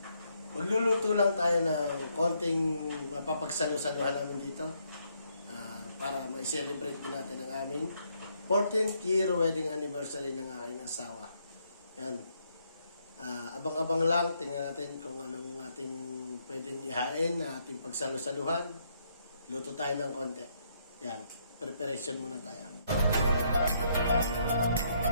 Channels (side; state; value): both; inverted; correlation -0.73